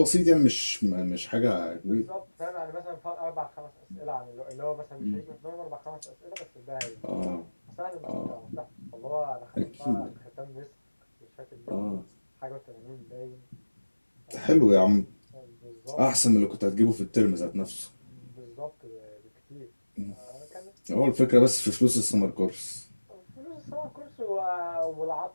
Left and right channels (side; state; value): both; inverted; correlation -1.00